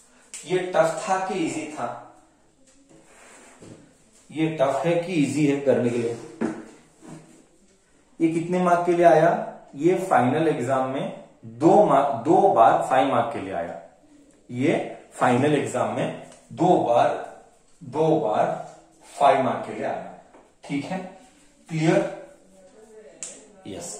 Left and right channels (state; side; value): identical; both; correlation 1.00